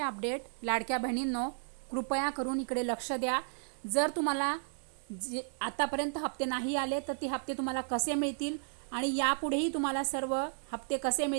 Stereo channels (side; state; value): left; silent; digital silence